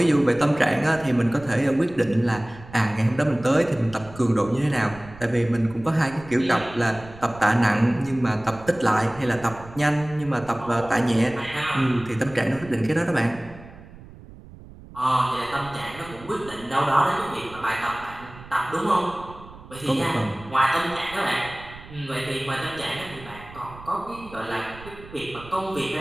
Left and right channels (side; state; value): right; noise; rumble, 18 dB below the sound